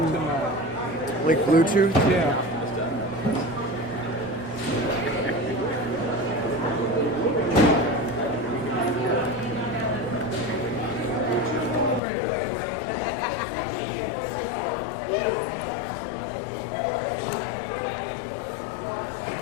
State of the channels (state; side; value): drops out; right; at 12.0 s